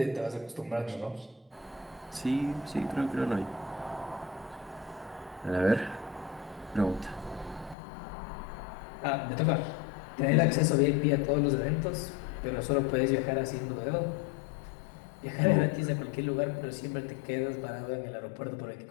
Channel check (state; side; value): drops out; right; at 7.8 s